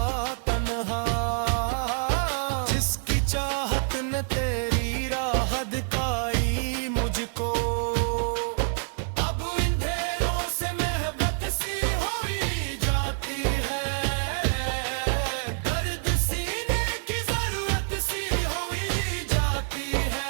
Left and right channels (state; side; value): silent; left; 60 dB below the other